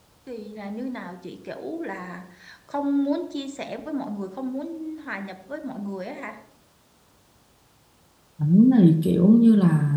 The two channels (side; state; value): both; identical; correlation 1.00